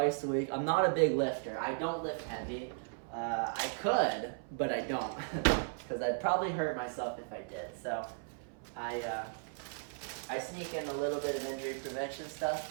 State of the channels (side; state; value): left; silent; 54 dB below the other